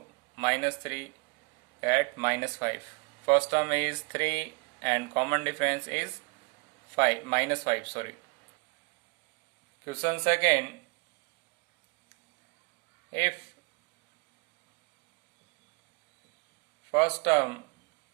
minus 3 at minus 5. First term is 3 and common difference is 5 minus 5. Sorry. Question second. If first term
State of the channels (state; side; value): quieter; left; 31.9 dB